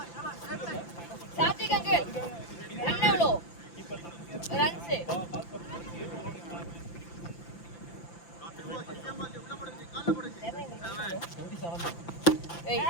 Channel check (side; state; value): right; late; 5.9 ms